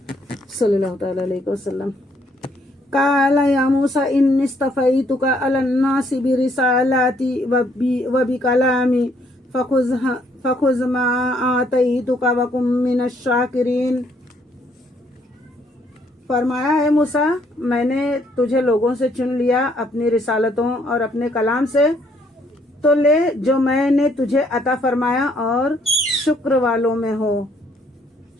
صلی اللہ تعالی علیہ وسلم. قال یا موسیٰ انی اصطفیتک علی الناس برسالاتی وبکلامی فخذ ما آتیتک وکن من الشاکرین. فرمایا ہے موسیٰ میں نے تجھے لوگوں سے چن لیا اپنی رسالتوں اور اپنے کلام سے، تو لے جو میں نے تجھے عطا فرمایا اور شکر والوں میں ہو.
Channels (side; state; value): both; normal; correlation 0.68